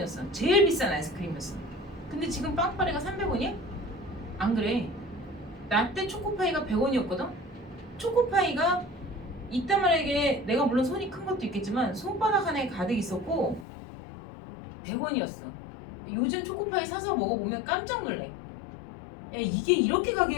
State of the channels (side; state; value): right; drops out; at 13.7 s